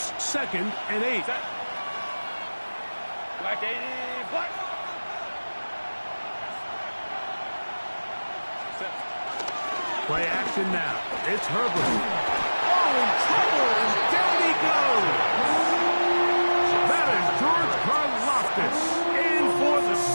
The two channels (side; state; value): both; inverted; correlation -1.00